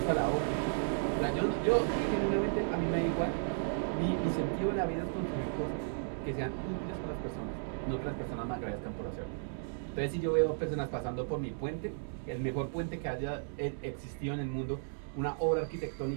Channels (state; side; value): silent; left; digital silence